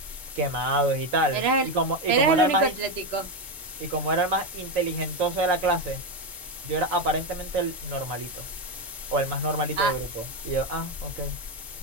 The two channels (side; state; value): both; normal; correlation 0.10